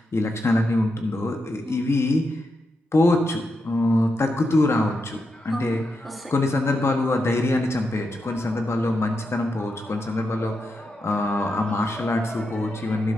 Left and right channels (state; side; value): normal; both; correlation 0.85